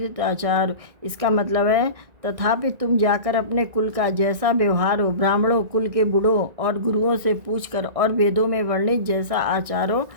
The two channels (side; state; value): left; late; 1.9 ms